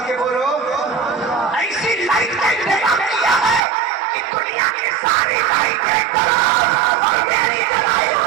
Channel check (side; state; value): left; drops out; at 3.6 s